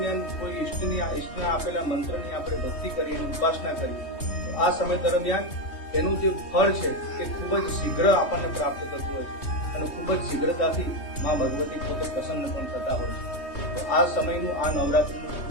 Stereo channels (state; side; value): late; right; 3.2 ms